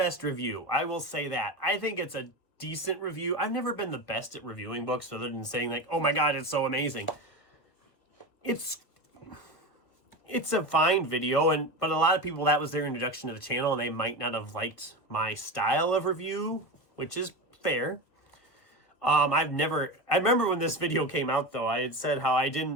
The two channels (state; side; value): late; right; 1.7 ms